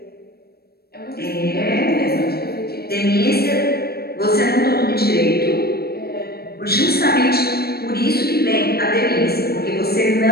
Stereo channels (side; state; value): right; late; 0.46 ms